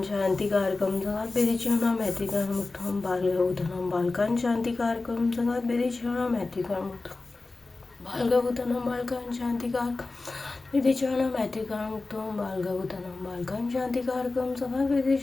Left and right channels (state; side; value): quieter; right; 3.5 dB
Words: शांतिकारकम संगात विदिशना मैत्रीकरण मुक्तम बालगभूतनम बालकं शांतिकारकम संगात विदिशना मैत्रीकरण मुक्तम बालगभूतनम बालकं शांतिकारकम विधिचरणं मैत्रिकां मुक्तं बालगवतनं बालकां शान्तिकारकं सदा